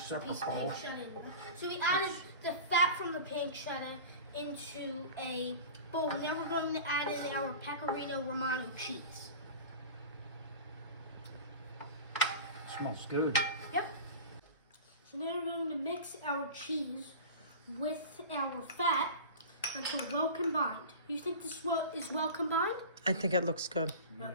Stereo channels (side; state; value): both; inverted; correlation -0.34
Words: piece of bowl. pancetta in there. So we added the fat from the pancetta into a bowl. Now we're going to add in our pecorino romano cheese. Smells good. Yep. So now we're going to mix our cheese with our fat until well combined. You think this is well combined? I think it looks good.